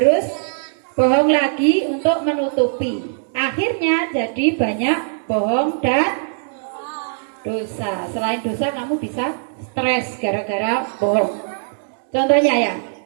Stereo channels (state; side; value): silent; left; digital silence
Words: bohong lagi untuk menutupi. Akhirnya jadi banyak bohong dan dosa. Selain dosa kamu bisa stres gara-gara bohong. Contohnya ya,